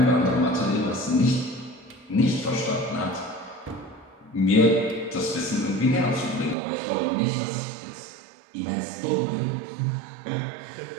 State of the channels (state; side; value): drops out; left; at 6.6 s